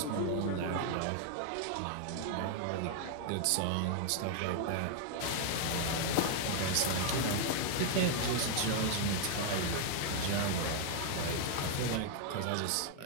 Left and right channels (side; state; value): both; different; correlation 0.00